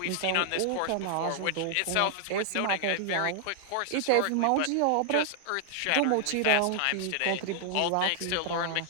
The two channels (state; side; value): different; both; correlation 0.00